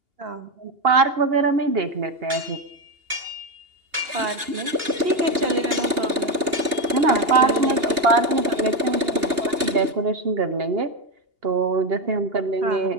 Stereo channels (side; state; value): left; late; 2.8 ms